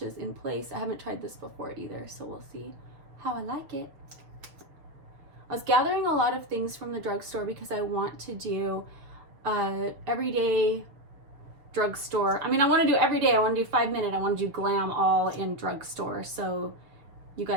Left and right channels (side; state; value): left; late; 6.9 ms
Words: in place. I haven't tried this before either, so we'll see how I like it. I was gathering a lot of things from the drugstore because I want to do everyday drugstore. I mean, I want to do every day. I want to do 5 minute. I want to do glam all in drugstore. So you